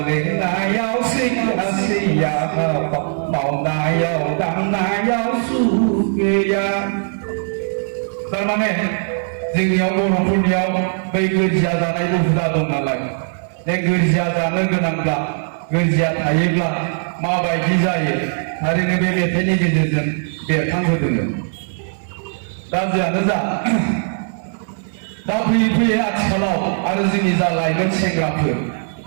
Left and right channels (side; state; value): left; silent; digital silence